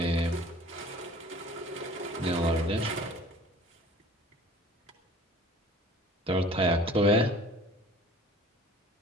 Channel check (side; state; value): both; normal; correlation 0.47